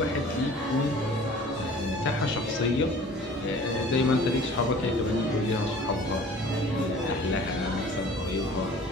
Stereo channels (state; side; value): normal; both; correlation 0.47